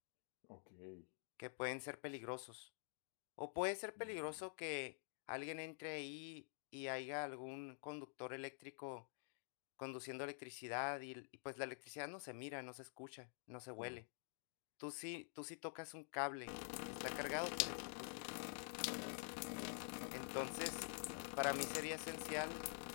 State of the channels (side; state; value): right; silent; digital silence